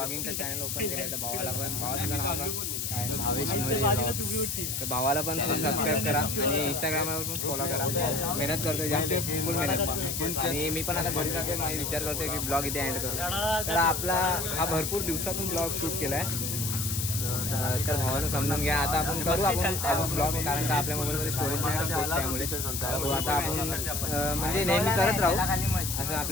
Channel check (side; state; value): left; noise; hiss, 2 dB below the sound